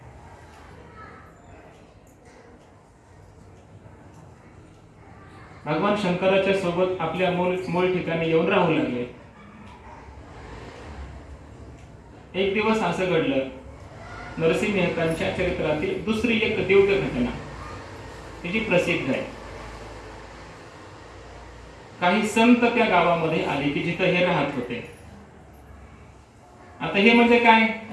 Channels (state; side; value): identical; both; correlation 1.00